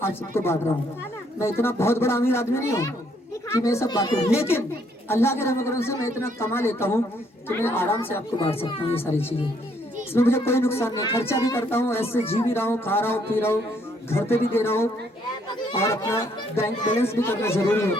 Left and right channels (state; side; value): normal; both; correlation 0.69